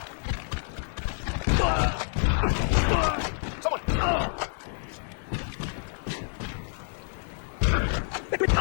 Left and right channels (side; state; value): right; silent; 56 dB below the other